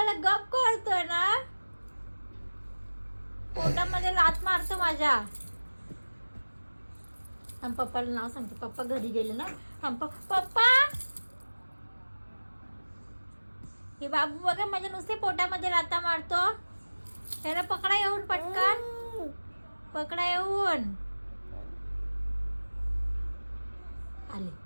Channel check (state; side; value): inverted; both; correlation -1.00